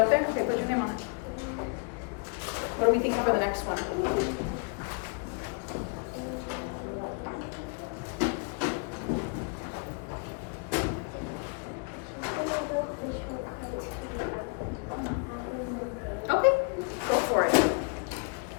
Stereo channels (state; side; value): quieter; right; 37.5 dB